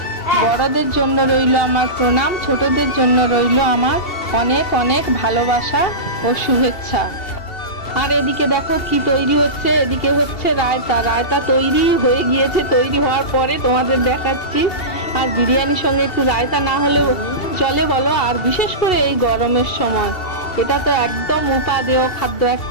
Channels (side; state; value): right; late; 2.7 ms